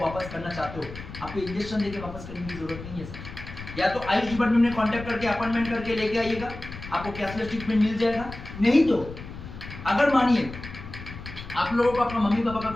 वापस करना चाहते हो, आपको इंजेक्शन देके वापस करने की जरूरत नहीं है सर। या तो आयुष डिपार्टमेंट में कांटेक्ट करके अपॉइंटमेंट करके लेके आइएगा, आपको कैशलेस ट्रीटमेंट मिल जाएगा। नहीं तो अगर मानिए आप लोगों को अपना मम्मी पापा का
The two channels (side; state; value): left; noise; rumble, 12 dB below the sound